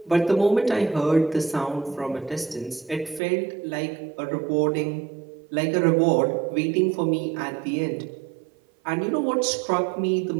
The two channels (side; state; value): left; drops out; at 3.2 s